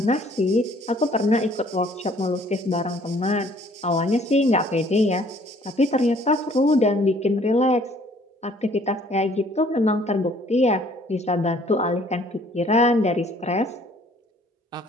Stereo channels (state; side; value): normal; both; correlation 0.59